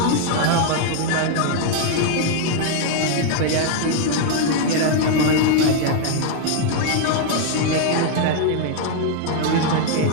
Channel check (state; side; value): different; both; correlation 0.00